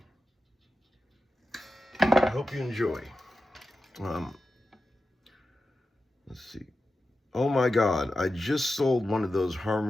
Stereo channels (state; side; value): normal; both; correlation 0.92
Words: I hope you enjoy. Let's see. Oh my God, I just sold one of those